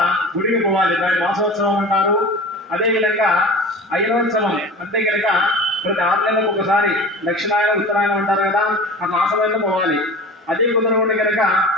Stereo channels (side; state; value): both; normal; correlation 0.36